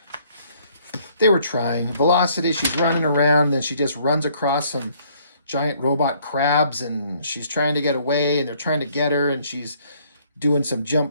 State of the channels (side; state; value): both; inverted; correlation -0.63